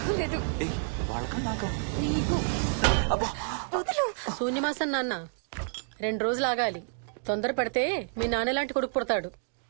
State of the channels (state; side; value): silent; left; 58 dB below the other